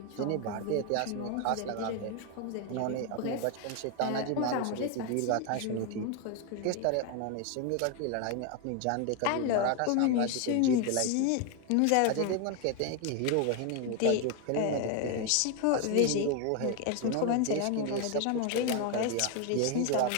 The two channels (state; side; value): different; both; correlation 0.01